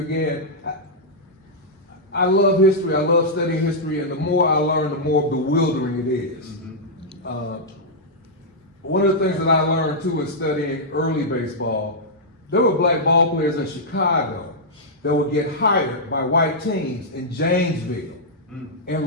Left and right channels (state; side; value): normal; both; correlation -0.08